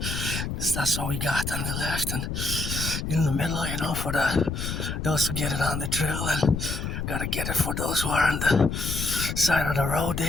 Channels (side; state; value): left; noise; rumble, 4 dB below the sound